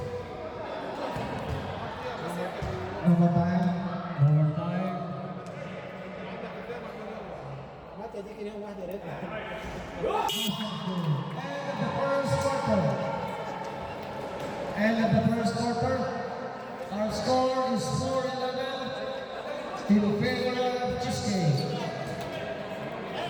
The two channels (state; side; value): identical; both; correlation 1.00